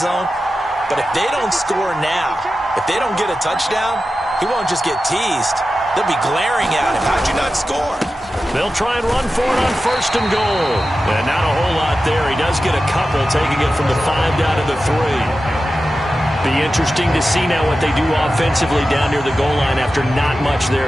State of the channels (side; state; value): both; normal; correlation 0.93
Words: But if they don't score now, if they don't get a touchdown, he won't just get teased. They'll be glaring at him. How'd you not score? They'll try and run for it on 1st and goal. And not a whole lot there. He does get a couple, taking it from the 5 down to the 3. Be interesting to see now what they do offensively down near the goal line after not much